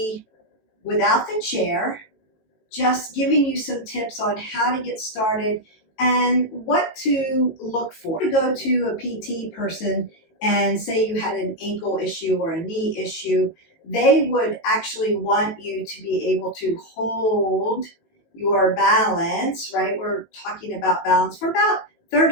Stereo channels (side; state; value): right; late; 18 ms